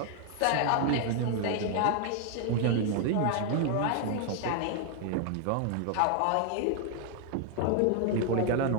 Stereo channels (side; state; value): both; different; correlation 0.00